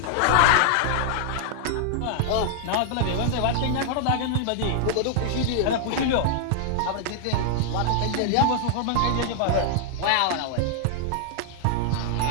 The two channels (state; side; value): different; both; correlation 0.00